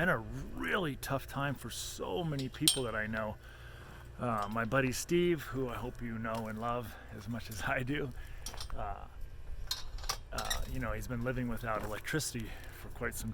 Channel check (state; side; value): identical; both; correlation 1.00